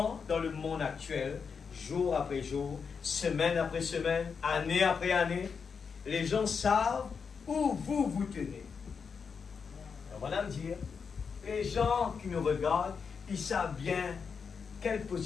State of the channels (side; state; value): right; quieter; 5.9 dB